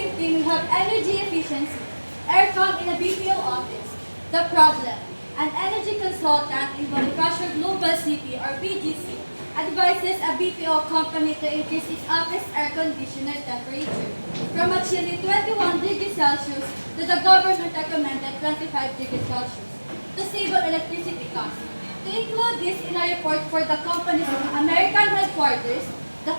we have energy efficiency, aircon in a BPO office. The problem: an energy consultant in Bonifacio Global City, or BGC, advises a BPO company to increase its office air conditioner temperature from a chilly 21 degrees Celsius to the government recommended 25 degrees Celsius to save on electricity costs. To include this in a report for the company's American headquarters, the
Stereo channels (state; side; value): inverted; both; correlation -1.00